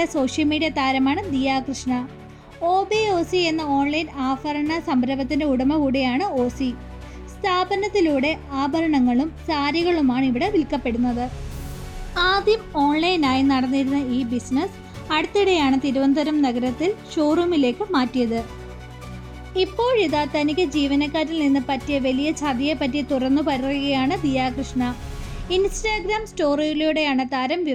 social media താരമാണ് Diya Krishna. OBOC എന്ന ഓൺലൈൻ ആഭരണ സംരംഭത്തിന്റെ ഉടമ കൂടിയാണ് ഓസി. സ്ഥാപനത്തിലൂടെ ആഭരണങ്ങളും സാരികളുമാണ് ഇവിടെ വിൽക്കപ്പെടുന്നത്. ആദ്യം ഓൺലൈനായി നടന്നിരുന്ന ഈ ബിസിനസ് അടുത്തിടെയാണ് തിരുവനന്തപുരം നഗരത്തിൽ ഷോറൂമിലേക്ക് മാറ്റിയത്. ഇപ്പോഴിതാ തനിക്ക് ജീവനക്കാരിൽ നിന്ന് പറ്റിയ വലിയ ചതിയെപ്പറ്റി തുറന്നു പറയുകയാണ് ദിയ കൃഷ്ണ. ഇൻസ്റ്റാഗ്രാം സ്റ്റോറിയിലൂടെയാണ് താരം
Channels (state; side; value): identical; both; correlation 1.00